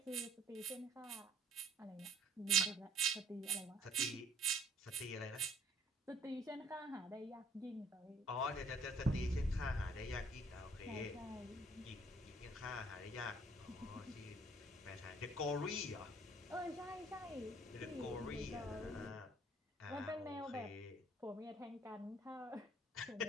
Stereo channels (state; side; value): normal; both; correlation 0.60